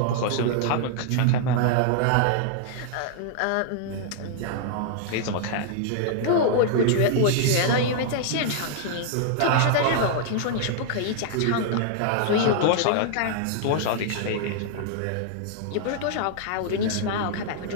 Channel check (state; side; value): different; both; correlation -0.01